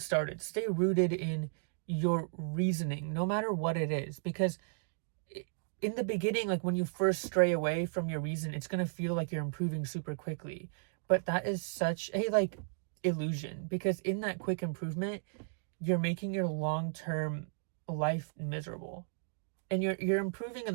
Stay rooted in your reasoning, no matter what it is, because in the beginning, like when you first stray away from your reason, it's going to feel like you're improving super quickly. But that is such a like illusion, because in that quick improvement, you're making your long-term life miserable. And you're improving in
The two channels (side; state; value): left; silent; digital silence